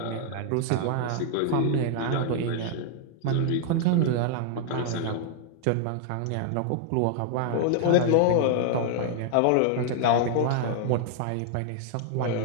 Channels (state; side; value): different; both; correlation 0.00